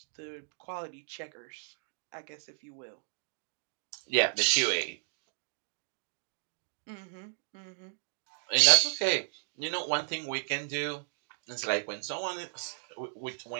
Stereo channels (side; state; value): left; silent; digital silence